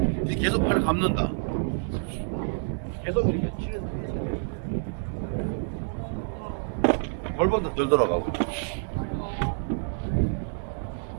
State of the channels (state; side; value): silent; left; digital silence